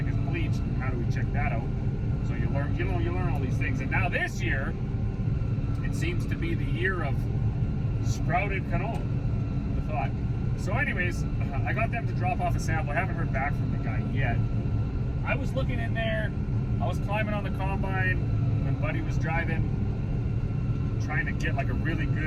is bleached, and how do we check that out? So you learn all these things. And now this year, it seems to be the year of sprouted canola, I thought. So anyways, I got them to drop off a sample. I haven't heard back from the guy yet. I was looking in there, I was climbing on the combine when Buddy was driving, trying to get like a really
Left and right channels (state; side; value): identical; both; correlation 1.00